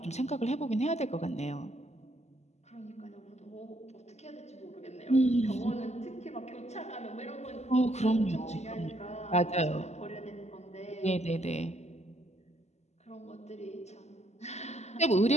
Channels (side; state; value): right; late; 0.33 ms